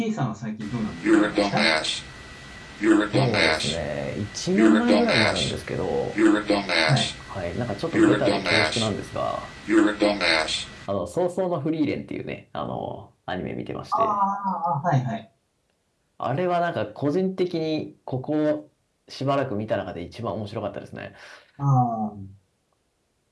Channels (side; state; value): both; identical; correlation 1.00